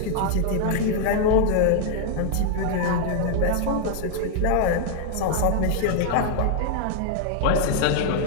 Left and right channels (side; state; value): both; different; correlation 0.00